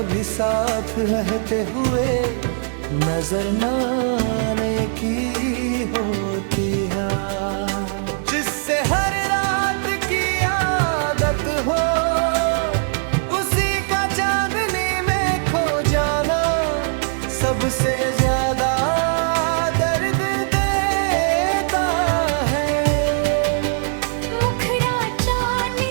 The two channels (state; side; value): silent; left; 55 dB below the other